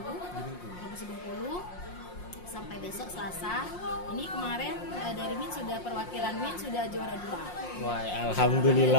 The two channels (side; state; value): right; late; 5.6 ms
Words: Provinsi Bengkulu. Sampai besok Selasa. Ini kemarin dari Min sudah perwakilan Min sudah juara 2. Wah,